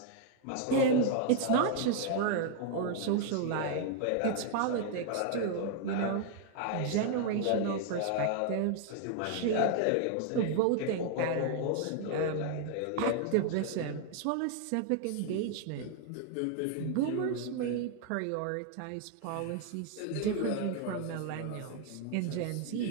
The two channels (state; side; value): different; both; correlation 0.00